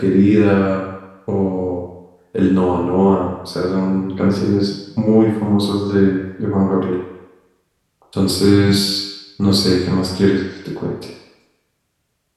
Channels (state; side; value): identical; both; correlation 1.00